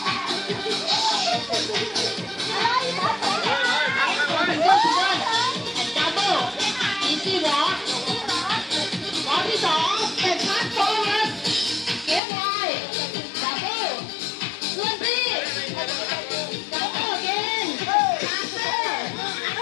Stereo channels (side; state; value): right; drops out; at 12.2 s